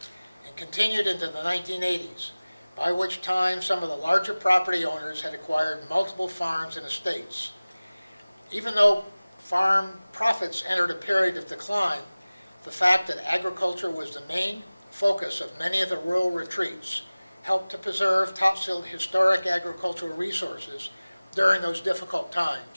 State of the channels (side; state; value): both; inverted; correlation -0.99